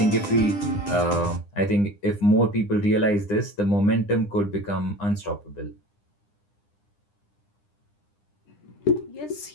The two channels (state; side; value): late; right; 9.9 ms